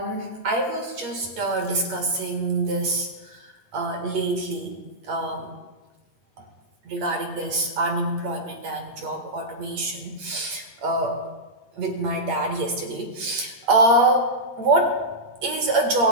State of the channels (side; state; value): left; late; 8.6 ms